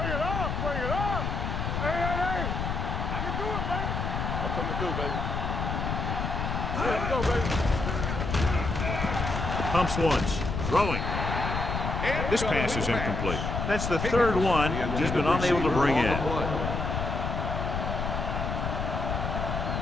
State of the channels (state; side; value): noise; left; rumble, 2 dB below the sound